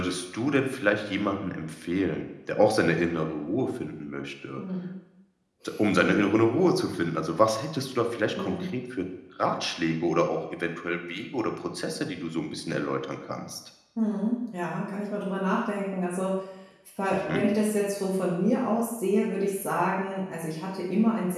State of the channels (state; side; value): identical; both; correlation 1.00